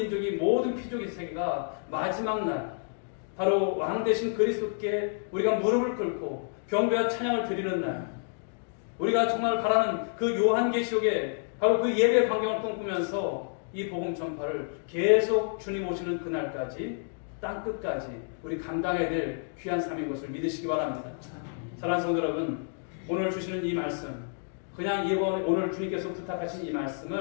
모든 피족의 세계가 마지막 날 바로 왕 대신 그리스도께 우리가 무릎을 꿇고 경배와 찬양을 드리는 날, 우리가 정말 바라는 그 요한계시록에 바로 그 예배 광경을 꿈꾸면서 이 복음 전파를 계속 주님 오시는 그날까지 땅끝까지 우리 감당해야 될 귀한 삶인 것을 믿으시기 바랍니다. 사랑하는 성도 여러분, 오늘 주시는 이 말씀, 그냥 오늘 주님께서 부탁하신 이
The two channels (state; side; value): silent; right; digital silence